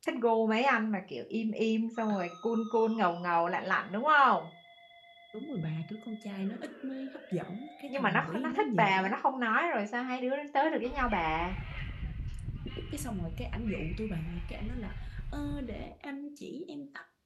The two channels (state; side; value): identical; both; correlation 1.00